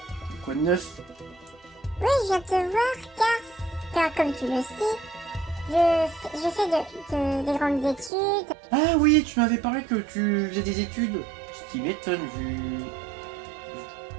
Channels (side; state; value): left; drops out; at 8.1 s